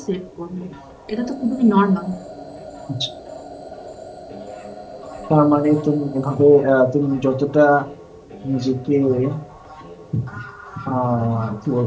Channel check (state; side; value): identical; both; correlation 1.00